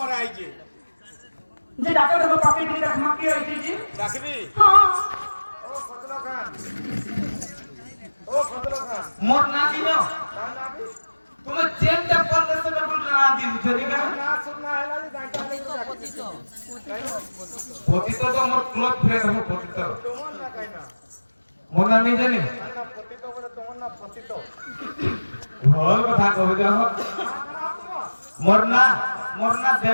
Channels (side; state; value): both; inverted; correlation -1.00